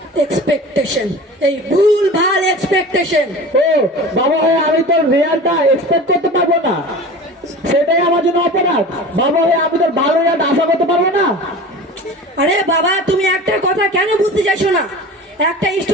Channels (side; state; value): both; normal; correlation 0.36